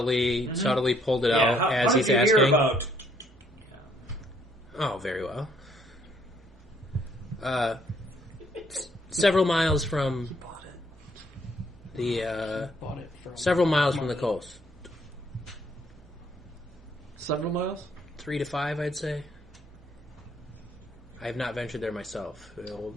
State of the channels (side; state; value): both; normal; correlation 0.66